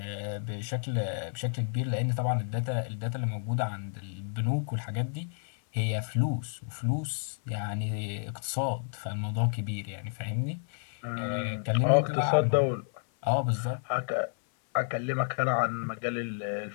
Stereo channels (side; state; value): right; silent; 57 dB below the other